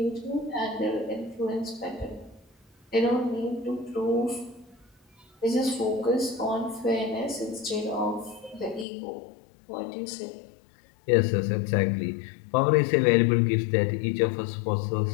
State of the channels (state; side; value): drops out; right; at 8.8 s